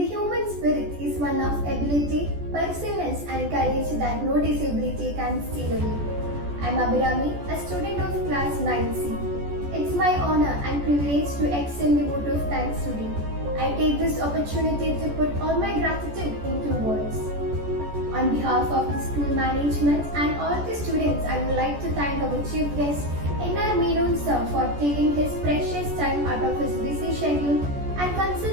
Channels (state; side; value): late; left; 14 ms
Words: human spirit is one of ability, perseverance and courage that no disability can steal away. I am Abhirami, a student of class 9C. It's my honor and privilege to extend the vote of thanks today. I take this opportunity to put all my gratitude into words. On behalf of the school management and all the students, I would like to thank our chief guest, N.R. Menon sir, for taking his precious time out of his busy schedule and